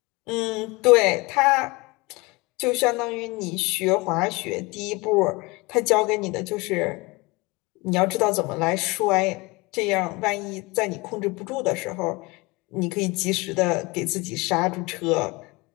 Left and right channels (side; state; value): right; quieter; 24.6 dB